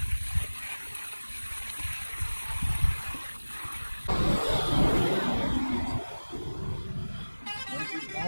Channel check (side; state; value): both; inverted; correlation -1.00